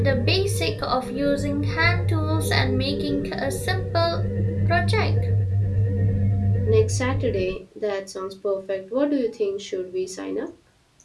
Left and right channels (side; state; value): both; identical; correlation 1.00